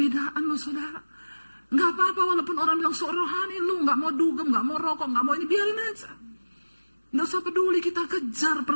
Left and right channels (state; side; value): inverted; both; correlation -1.00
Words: loh saudara. Gak apa-apa walaupun orang bilang sok rohani, lu gak mau dugem, gak mau rokok, gak mau ini, biarin aja. Gak usah peduli, kita kejar